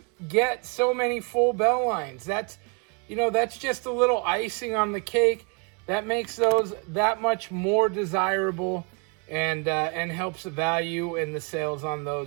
get so many full bell lines. That's just a little icing on the cake. That makes those that much more desirable and helps the value and the sales on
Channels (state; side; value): quieter; left; 34.7 dB